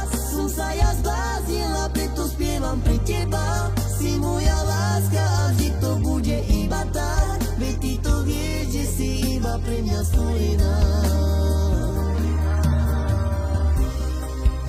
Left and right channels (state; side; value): identical; both; correlation 1.00